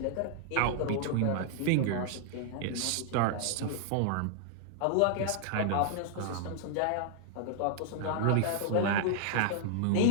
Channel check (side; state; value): both; different; correlation -0.01